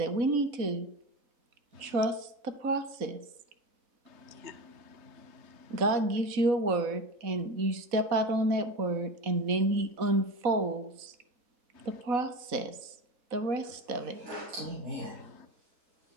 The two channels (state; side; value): late; left; 4.1 ms